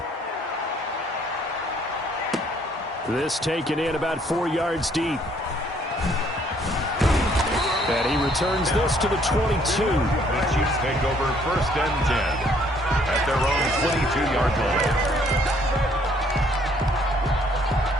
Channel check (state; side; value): normal; both; correlation 0.64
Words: This taken in about 4 yards deep. And he returns this to the 22. The Chiefs take over first and 10 at their own 22-yard line.